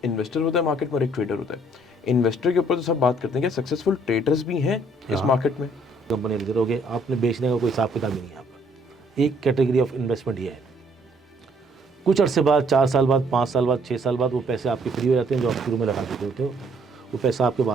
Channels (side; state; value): both; normal; correlation 0.64